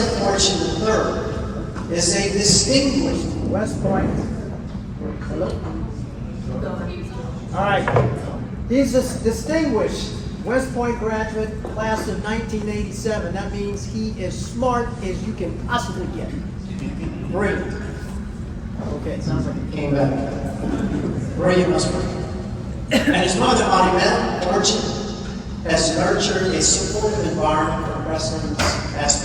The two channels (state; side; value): identical; both; correlation 1.00